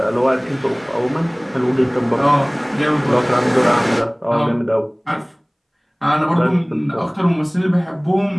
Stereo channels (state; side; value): identical; both; correlation 1.00